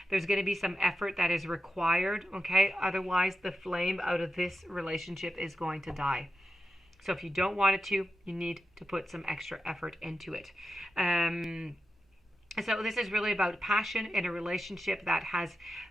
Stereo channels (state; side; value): normal; both; correlation 0.90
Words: There's going to be some effort that is required, okay? Otherwise, the flame out of this relationship is going to die. So if you don't want it to, you need to put some extra effort into it. So this is really about passion in a relationship that has